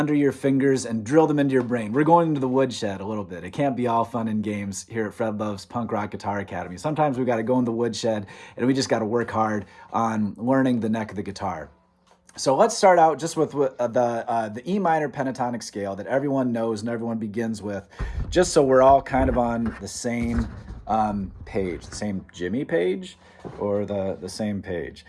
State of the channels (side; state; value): both; identical; correlation 1.00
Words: your fingers and drill them into your brain. We're going into the woodshed a little bit. It can't be all fun and games here at Fred Love's Punk Rock Guitar Academy. Sometimes we got to go in the woodshed and we just got to work hard on learning the neck of the guitar. So let's start out just with the E minor pentatonic scale that everyone knows and everyone begins with, just so we're all kind of on the same page, the same Jimmy page or the same page.